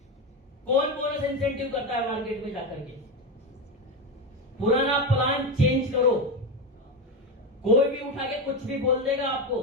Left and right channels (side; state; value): both; normal; correlation 0.16